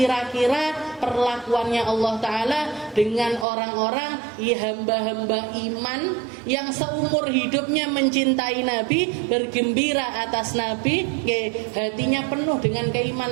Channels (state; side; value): drops out; left; at 3.5 s